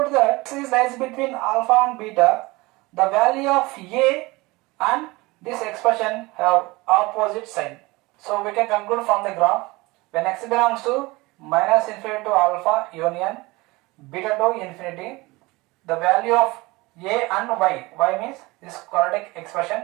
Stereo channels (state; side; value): quieter; left; 22.5 dB